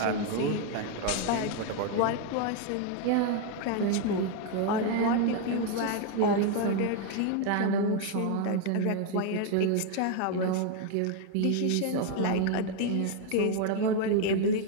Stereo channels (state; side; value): different; both; correlation 0.00